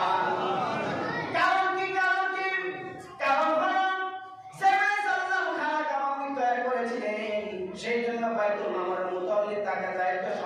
কারণ কি কারণ হলো ইব্রাহিম সাল্লাম খানা কামানি তৈরি করেছিলেন, সেই জন্য বাইতুল মামুরের মুতাওয়াল্লি তাকে দায়িত্ব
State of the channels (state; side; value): identical; both; correlation 1.00